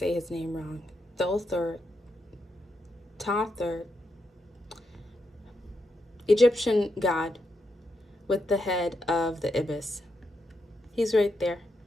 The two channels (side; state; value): both; normal; correlation 0.83